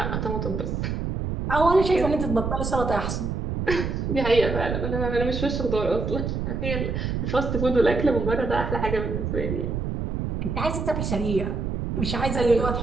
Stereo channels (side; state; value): right; noise; rumble, 2 dB below the sound